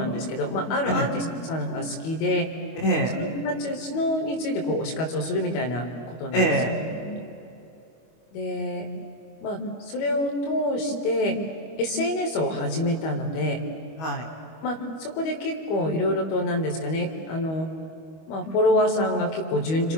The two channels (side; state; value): right; late; 25 ms